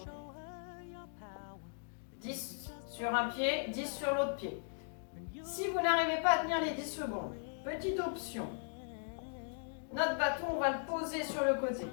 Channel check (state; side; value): silent; right; digital silence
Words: 10 sur un pied, 10 sur l'autre pied. Si vous n'arrivez pas à tenir les 10 secondes, petite option. Notre bâton, on va le poser sur le côté.